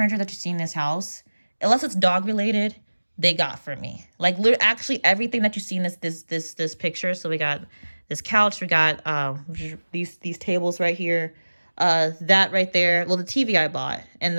that you see in this house, unless it's dog related, they got for me. Like actually everything that you see in this picture. So we got this couch, we got these tables right here, that right there. Well, the TV I bought and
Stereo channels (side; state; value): both; inverted; correlation -1.00